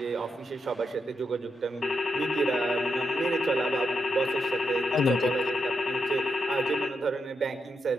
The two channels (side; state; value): both; normal; correlation 0.84